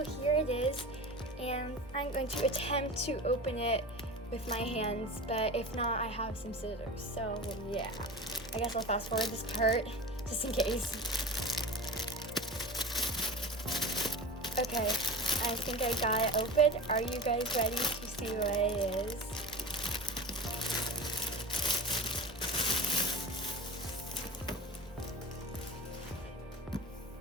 here it is, and I'm going to attempt to open it with my hands, but if not, I have some scissors. So yeah, I guess I'll fast forward this part just in case. Okay, I think I got it open. Are you guys ready to see what it is?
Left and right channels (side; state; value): both; normal; correlation 0.33